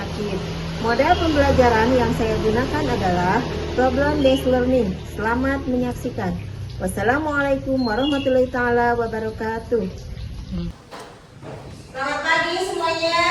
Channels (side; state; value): both; identical; correlation 1.00